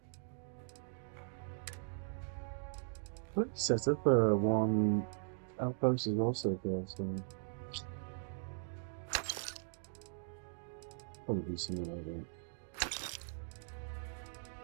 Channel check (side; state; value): left; silent; digital silence